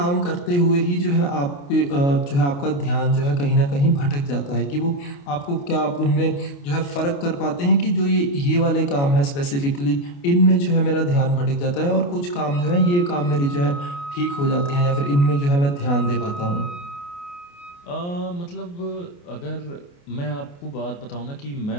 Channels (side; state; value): right; late; 28 ms